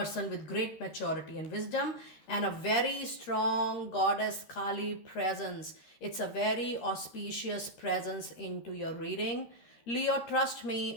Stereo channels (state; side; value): late; right; 13 ms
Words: with great maturity and wisdom, and a very strong goddess Kali presence. It's a very auspicious presence into your reading. Leo, trust